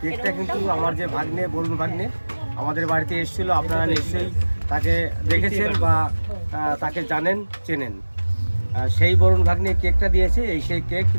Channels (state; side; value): inverted; both; correlation -1.00